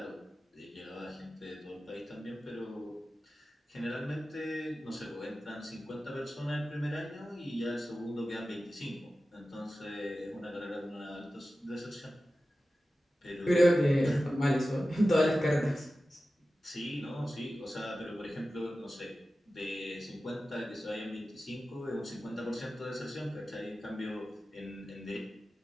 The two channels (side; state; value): both; normal; correlation 0.94